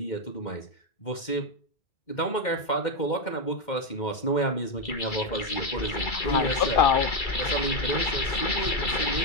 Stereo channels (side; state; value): right; late; 2.1 ms